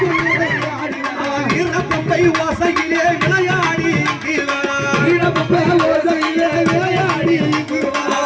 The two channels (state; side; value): identical; both; correlation 1.00